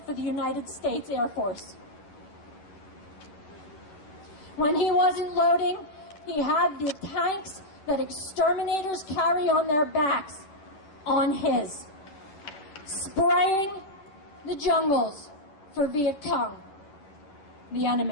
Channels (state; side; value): late; right; 10 ms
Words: for the United States Air Force. When he wasn't loading, he had the tanks that exterminators carry on their backs on his, spraying the jungles for Viet Cong, the